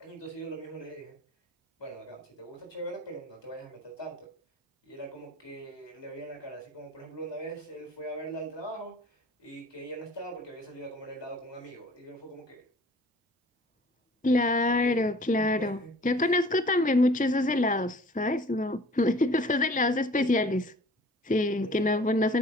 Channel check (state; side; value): normal; both; correlation 0.50